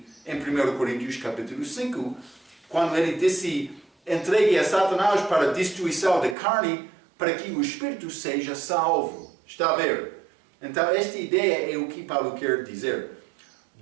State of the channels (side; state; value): left; drops out; at 6.4 s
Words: em 1 Coríntios capítulo 5, quando ele disse, entregue a Satanás para a destruição da carne, para que o Espírito seja salvo. Está a ver? Então, esta ideia é o que Paulo quer dizer.